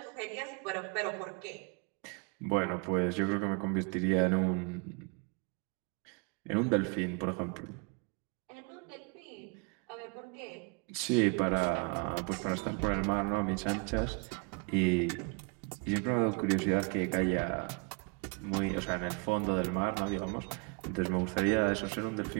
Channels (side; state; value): left; quieter; 31.4 dB